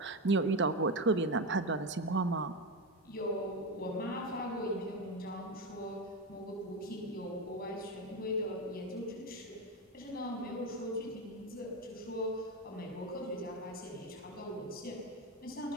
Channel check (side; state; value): both; normal; correlation 0.15